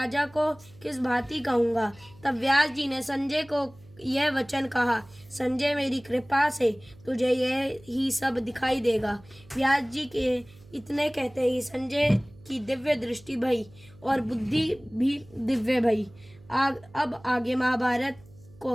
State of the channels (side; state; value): right; noise; hum, 24 dB below the sound